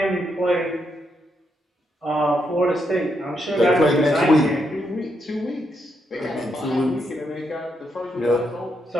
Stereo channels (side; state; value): both; normal; correlation 0.80